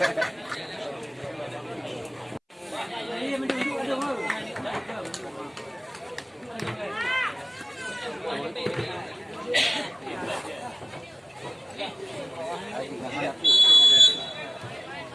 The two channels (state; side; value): identical; both; correlation 1.00